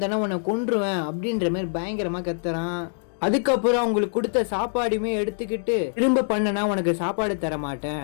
உன்னை கொன்றுவேன் அப்படின்ற மாதிரி பயங்கரமா கத்துறான். அதுக்கப்புறம் அவங்களுக்கு கொடுத்த சாப்பாடுமே எடுத்துக்கிட்டு திரும்ப பண்ணனா உனக்கு சாப்பாடு தர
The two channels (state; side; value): silent; right; digital silence